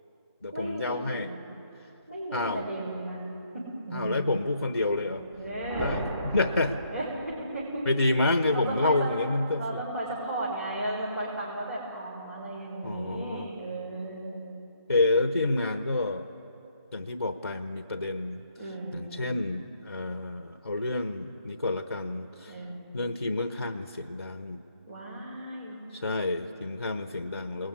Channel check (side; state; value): both; inverted; correlation -0.69